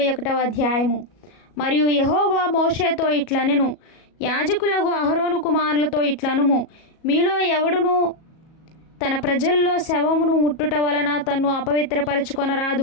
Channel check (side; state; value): right; late; 37 ms